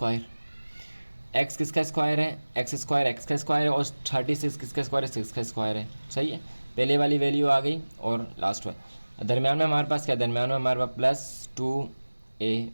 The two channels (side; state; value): both; inverted; correlation -1.00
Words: एक्स किसका स्क्वायर है, एक्स स्क्वायर एक्स का स्क्वायर है और 36 किसका स्क्वायर है, 6 का स्क्वायर है। सही है, पहले वाली वैल्यू आ गई और लास्ट में दरम्यान में हमारे पास क्या, दरम्यान में हमारे पास प्लस